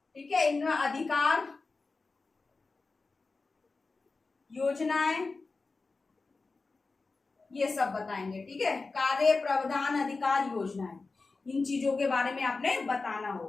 ठीक है, इनका अधिकार, योजनाएं, ये सब बताएंगे। ठीक है, कार्य, प्रावधान, अधिकार, योजनाएं, इन चीजों के बारे में आपने बताना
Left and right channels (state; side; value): quieter; right; 3.9 dB